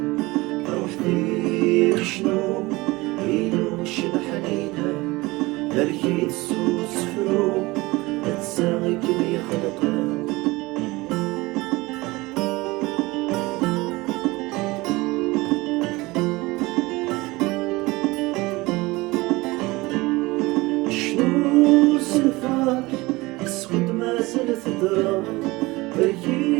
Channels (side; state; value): left; quieter; 21.7 dB